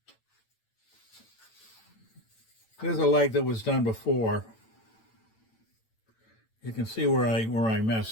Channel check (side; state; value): right; late; 9.0 ms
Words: There's a leg that was done before. You can see where I